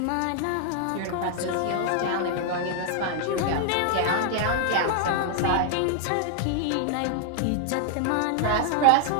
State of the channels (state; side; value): different; both; correlation 0.00